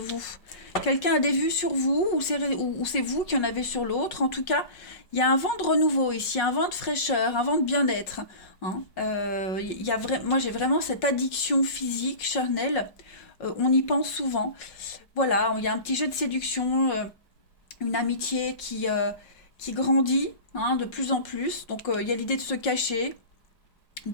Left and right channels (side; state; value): right; late; 5.5 ms